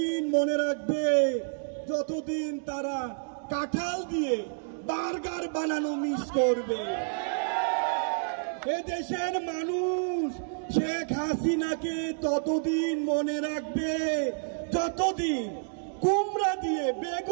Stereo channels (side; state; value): left; silent; digital silence